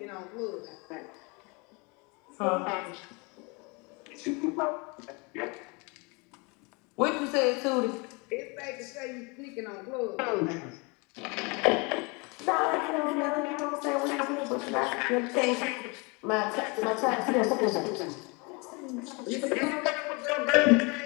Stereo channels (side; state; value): right; quieter; 29.4 dB